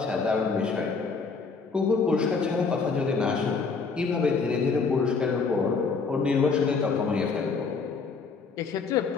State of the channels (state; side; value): quieter; right; 4.8 dB